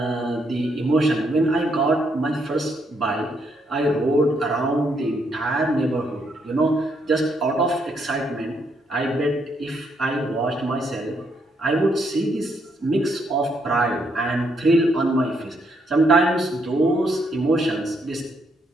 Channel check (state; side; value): normal; both; correlation 0.75